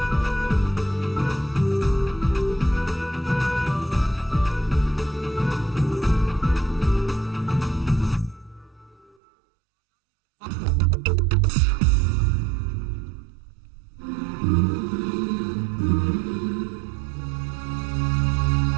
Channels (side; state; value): left; drops out; at 9.1 s